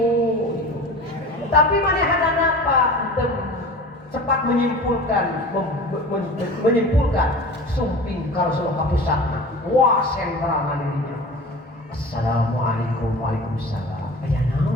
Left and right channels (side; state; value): both; normal; correlation 0.37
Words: tapi manehna apa cepat menyimpulkan sumping ka Rasulullah pusatna wah sentralna dirinya assalamualaikum waalaikumsalam aya